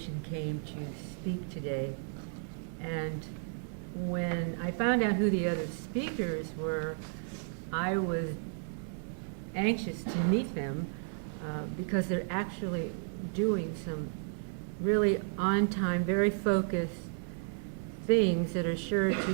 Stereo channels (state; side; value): silent; left; 56 dB below the other